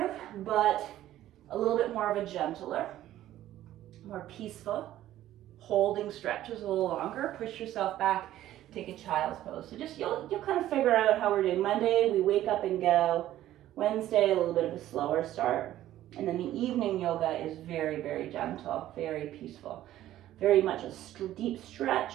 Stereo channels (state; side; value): quieter; left; 13.4 dB